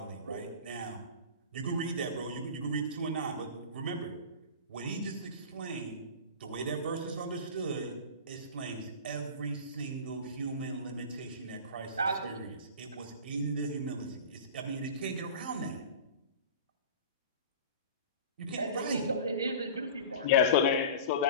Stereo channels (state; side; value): inverted; both; correlation -0.34